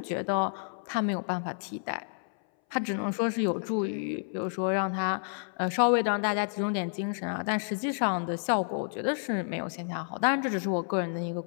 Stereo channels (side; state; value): right; silent; 58 dB below the other